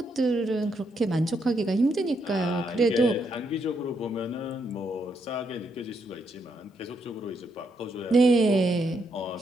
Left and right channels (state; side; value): normal; both; correlation 0.77